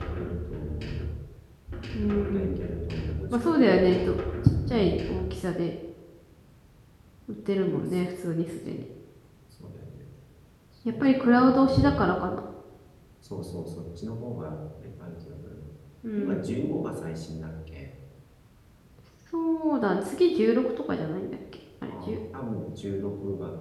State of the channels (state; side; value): identical; both; correlation 1.00